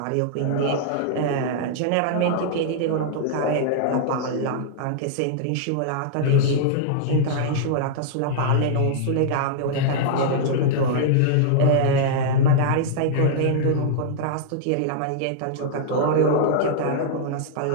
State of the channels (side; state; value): both; different; correlation -0.01